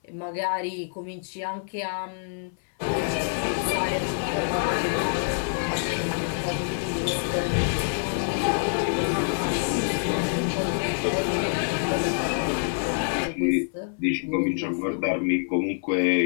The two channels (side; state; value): right; silent; 58 dB below the other